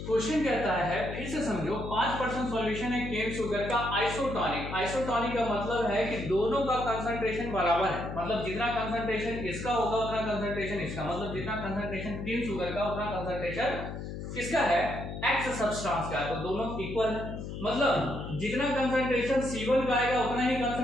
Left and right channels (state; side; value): noise; left; hum, 7 dB below the sound